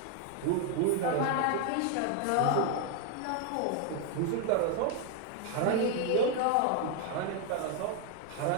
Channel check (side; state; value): both; different; correlation 0.00